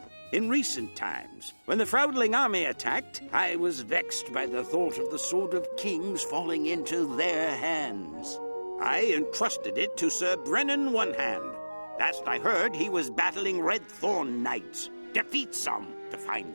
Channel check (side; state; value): both; inverted; correlation -1.00